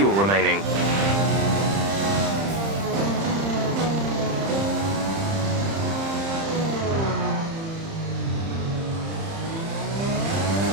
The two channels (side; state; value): left; late; 30 ms